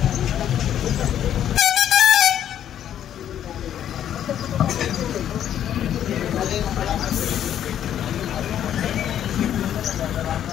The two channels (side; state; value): right; quieter; 10.4 dB